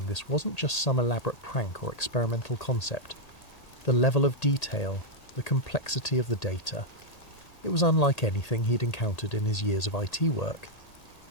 this wasn't just some elaborate prank or experimental concept. The level of detail, the complexity of the data. It was unlike anything he'd encountered in his years of IT work.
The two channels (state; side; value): late; right; 1.8 ms